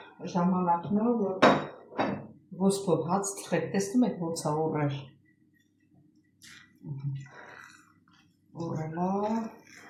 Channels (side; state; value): both; identical; correlation 1.00